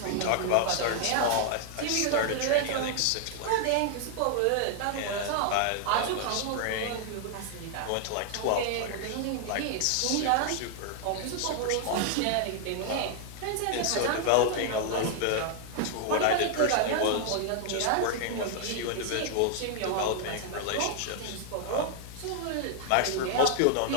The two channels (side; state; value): both; different; correlation 0.00